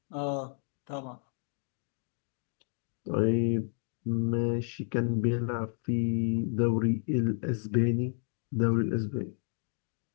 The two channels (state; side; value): silent; right; 57 dB below the other